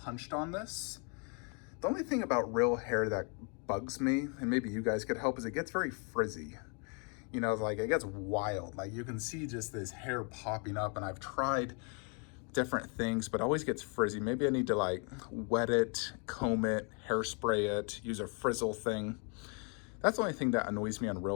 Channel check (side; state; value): right; quieter; 37.1 dB